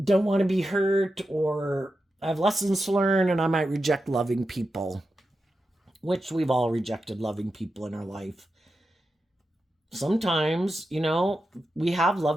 don't want to be hurt, or I have lessons to learn, and I might reject loving people, which we've all rejected loving people in our life. Sometimes, we have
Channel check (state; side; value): normal; both; correlation 0.89